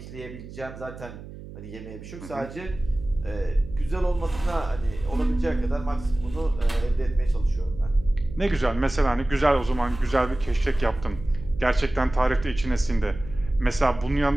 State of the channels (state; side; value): noise; right; hum, 14 dB below the sound